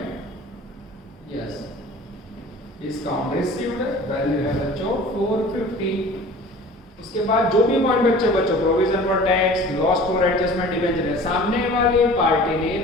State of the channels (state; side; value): normal; both; correlation 0.43